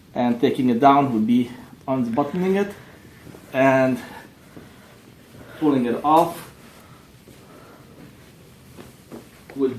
and taking it down would be unbuttoning it and pulling it off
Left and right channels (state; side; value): identical; both; correlation 1.00